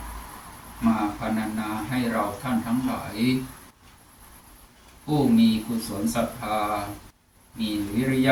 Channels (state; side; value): identical; both; correlation 1.00